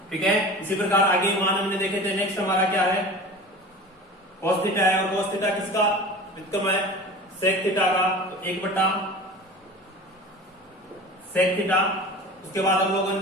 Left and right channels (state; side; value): normal; both; correlation 0.36